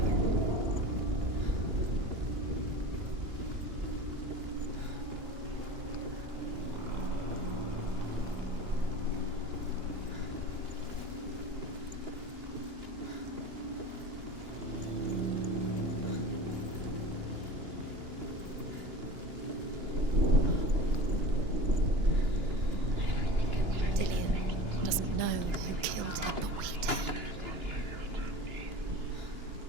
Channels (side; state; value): left; late; 2.9 ms